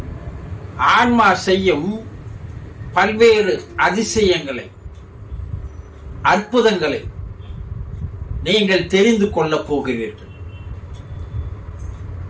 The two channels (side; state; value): both; identical; correlation 1.00